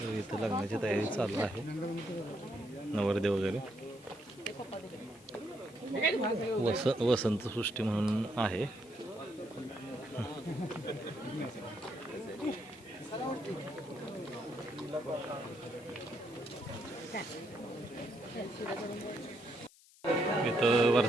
इथं लग्नाची तयारी चालू आहे. नवरदे वगैरे वसंत सृष्टी म्हणून आहे. इथं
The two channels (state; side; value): noise; left; hiss, 25 dB below the sound